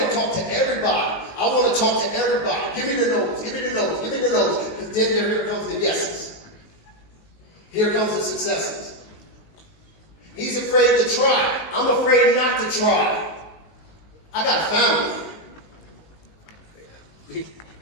talk to everybody. I want to talk to everybody. Give me the no's, give me the no's, give me the no's. Because then here comes the yeses. Here comes the successes. He's afraid to try. I'm afraid not to try. I got a family.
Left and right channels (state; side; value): late; right; 19 ms